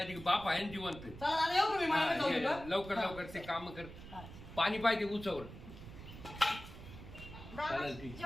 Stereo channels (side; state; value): right; noise; rumble, 14 dB below the sound